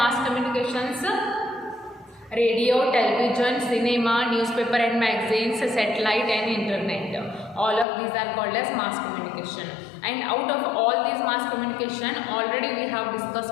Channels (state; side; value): drops out; right; at 7.9 s